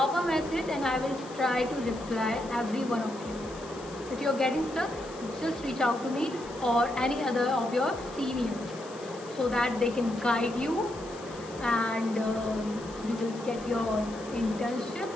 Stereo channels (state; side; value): noise; left; hiss, 19 dB below the sound